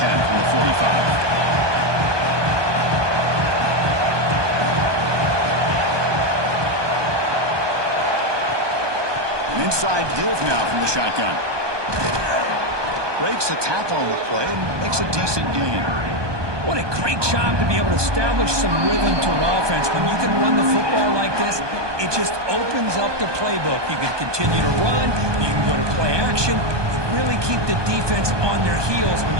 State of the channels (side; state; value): left; late; 1.2 ms